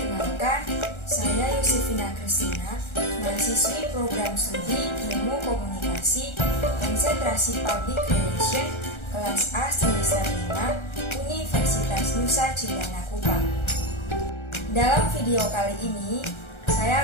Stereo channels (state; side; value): late; right; 1.3 ms